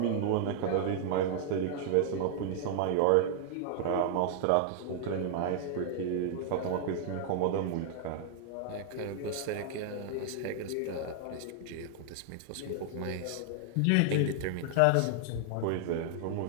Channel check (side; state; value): both; different; correlation -0.01